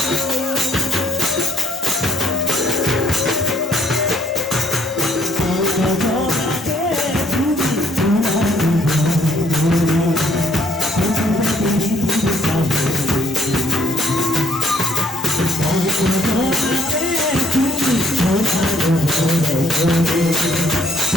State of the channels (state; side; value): normal; both; correlation 0.66